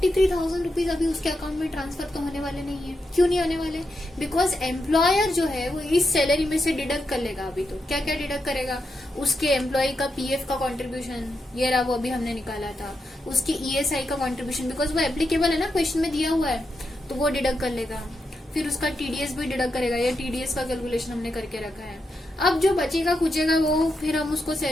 रुपीज अभी उसके अकाउंट में ट्रांसफर तो होने वाले नहीं है। क्यों नहीं होने वाले? बिकॉज एम्प्लॉयर जो है वो इस सैलरी में से डिडक्ट कर लेगा। अभी तो क्या क्या डिडक्ट करेगा? उसके एम्प्लॉय का PF का कॉन्ट्रीब्यूशन, ये रहा वो अभी हमने निकाला था, उसकी ESI का कॉन्ट्रीब्यूशन, बिकॉज वो एप्लीकेबल है ना, क्वेश्चन में दिया हुआ है, तो वो डिडक्ट कर लेगा। फिर उसका TDS भी डिडक्ट करेगा, ये TDS का कैलकुलेशन हमने करके रखा है। अब जो बचेगा कुचेगा वो फिर हम उसको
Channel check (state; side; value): normal; both; correlation 0.85